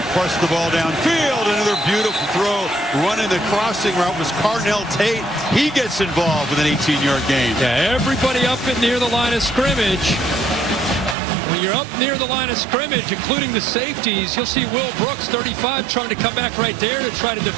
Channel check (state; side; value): drops out; left; at 11.2 s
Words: push the ball downfield. Another beautiful throw. Running the crossing route was Carnell Tate. He gets involved with an 18-yard gain. Yeah, everybody up and near the line of scrimmage. When you're up near the line of scrimmage, including the safeties, you'll see Will Brooks, 35, trying to come back right there to try to